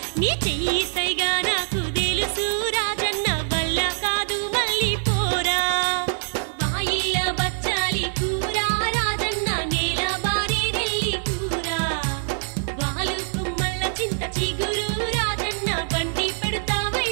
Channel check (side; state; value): left; silent; digital silence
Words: నీ చెయ్యి సైగా నాకు తెలుసు రాజన్న వల్ల కాదు మళ్ళీ పోరా బాయిల బచ్చాలి కూర రాజన్న నేల బారి నెల్లి కూర వాలు కుమ్మల్ల చింత చిగురు రాజన్న బండి పెడతా